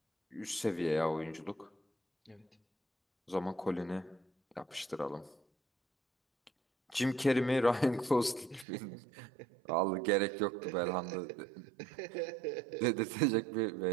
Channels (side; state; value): left; drops out; at 8.7 s